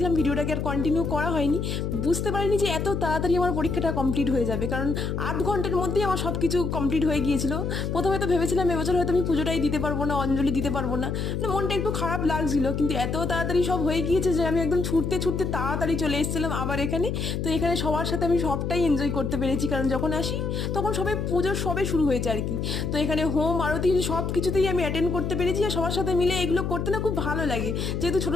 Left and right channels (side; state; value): left; noise; hum, 2 dB below the sound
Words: ভিডিওটাকে আর কন্টিনিউ করা হয়নি। বুঝতে পারিনি যে এত তাড়াতাড়ি আমার পরীক্ষাটা কমপ্লিট হয়ে যাবে, কারণ 8 ঘন্টার মধ্যেই আমার সব কিছু কমপ্লিট হয়ে গিয়েছিল। প্রথমে তো ভেবেছিলাম এবছর হয়তো আমি পুজোটাই দিতে পারবো না, অঞ্জলি দিতে পারবো না, মানে মনটা একটু খারাপ লাগছিল। কিন্তু এত তাড়াতাড়ি সব হয়ে গিয়েছে যে আমি একদম ছুটতে ছুটতে তাড়াতাড়ি চলে এসেছিলাম আবার এখানে। তো এখানে সবার সাথে আমি সবটাই এনজয় করতে পেরেছি, কারণ যখন আসি তখন সবাই পুজোর সবে শুরু হয়েছে আর কি। তো এখানে হোম আরতি সব কিছুতেই আমি অ্যাটেন্ড করতে পেরেছি, আর সবার সাথে মিলে এগুলো করতে না খুব ভালো লাগে, যেহেতু ছোটো